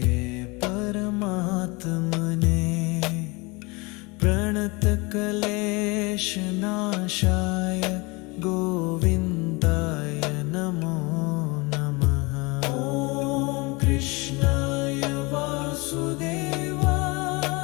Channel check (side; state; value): right; quieter; 26.3 dB